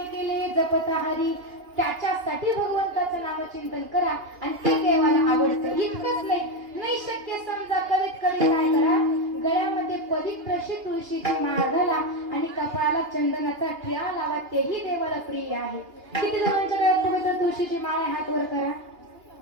केले जपता हरी. त्याच्यासाठी भगवंताचं नामचिंतन करा आणि ते देवाला आवडतं. इतकंच नाही शक्य समजा करीत करीत काय करा, गळ्यामध्ये पवित्र अशी तुळशीची माळ घाला आणि कपाळाला चंदनाचा टिळा लावा, तेही देवाला प्रिय आहे. किती जणांच्या गळ्यात पवित्र तुळशीची माळ आहे, हात वर करा.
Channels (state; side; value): late; left; 2.8 ms